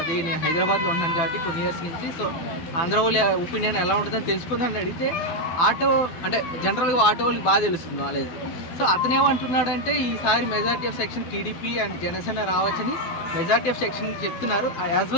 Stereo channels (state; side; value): late; right; 12 ms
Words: నేను హైదరాబాద్లో ఉన్నాను కాబట్టి కొన్ని ఇయర్స్ నుంచి, సో ఆంధ్ర వాళ్ళ ఒపీనియన్ ఎలా ఉంటుందని తెలుసుకుందని అడిగితే ఆటో అంటే జనరల్గా ఆటో వాళ్ళకి బాగా తెలుస్తుంది నాలెడ్జ్. సో అతనేమంటున్నాడంటే ఈసారి majority of section TDP and Janasena రావచ్చని మెజారిటీ ఆఫ్ సెక్షన్ చెప్తున్నారు, యాజ్